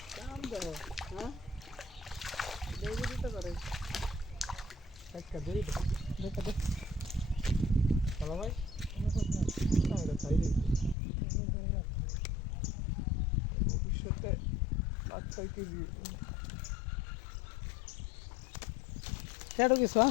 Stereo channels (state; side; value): drops out; right; at 11.0 s